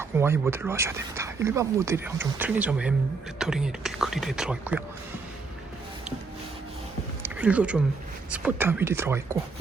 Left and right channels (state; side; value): quieter; left; 4.3 dB